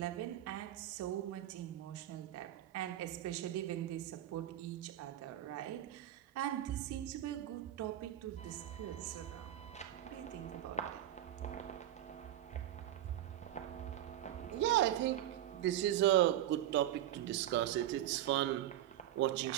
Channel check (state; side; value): quieter; left; 12.9 dB